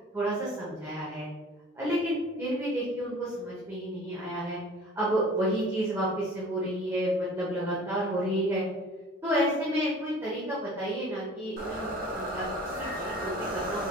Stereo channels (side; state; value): both; normal; correlation 0.45